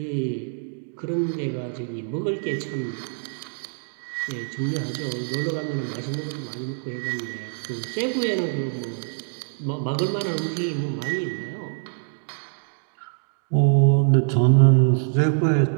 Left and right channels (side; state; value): left; silent; digital silence